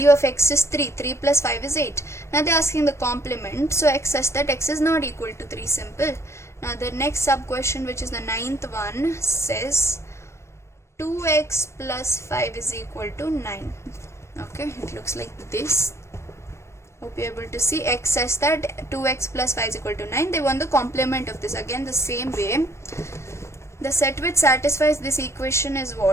of x is 3. 3 plus 5 is 8. Now they're asking the complement, so x such that x is not equal to 3. Simple. Now the next sub question, which is the ninth one, says 2x plus 5 is equal to 9. Okay, it looks like this. Hope you're able to see. X such that 2x plus 5 is equal to 9. They want the complement of this. Again the same way. The set which satisfies this equation is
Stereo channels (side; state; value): right; late; 0.13 ms